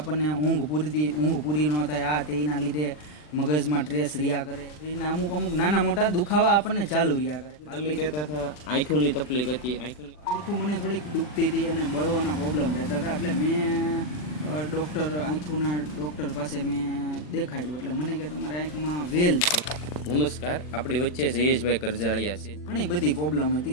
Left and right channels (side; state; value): right; late; 40 ms